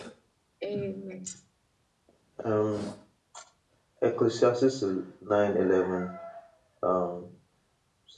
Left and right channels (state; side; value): identical; both; correlation 1.00